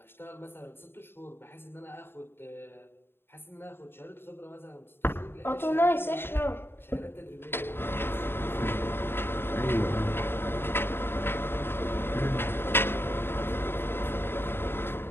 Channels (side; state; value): right; late; 0.11 ms